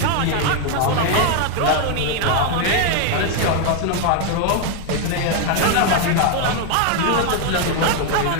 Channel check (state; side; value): different; both; correlation 0.01